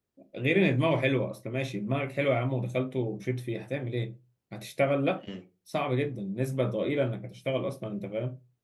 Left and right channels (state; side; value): identical; both; correlation 1.00